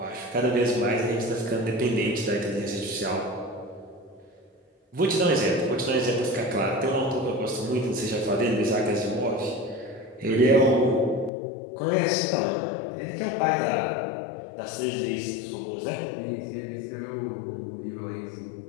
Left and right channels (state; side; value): drops out; right; at 11.3 s